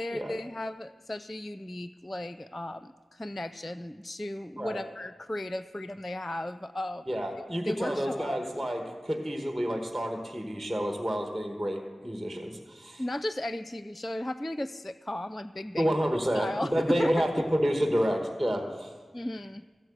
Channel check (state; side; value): normal; both; correlation 0.96